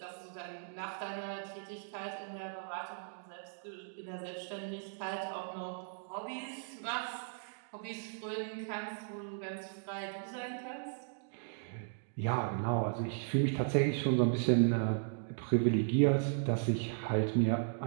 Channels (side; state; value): left; silent; digital silence